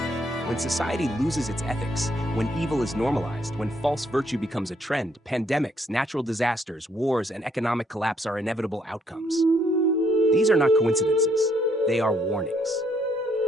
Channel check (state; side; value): normal; both; correlation 0.70